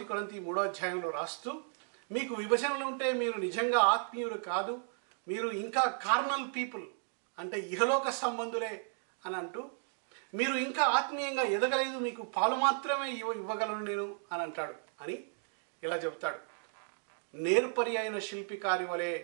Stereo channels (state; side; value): silent; left; 55 dB below the other